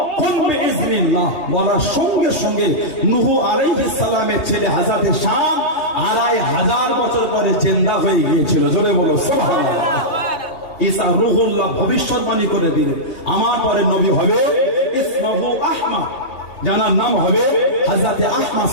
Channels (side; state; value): right; late; 2.8 ms